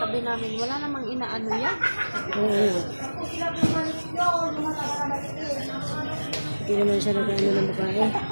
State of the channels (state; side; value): inverted; both; correlation -1.00